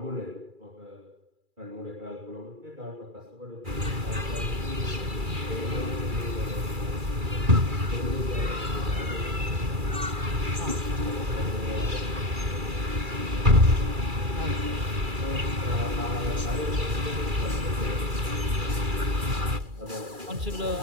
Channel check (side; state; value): left; late; 2.3 ms